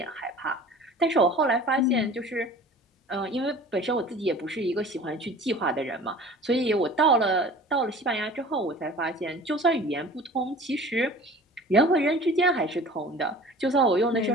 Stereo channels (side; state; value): both; normal; correlation 0.44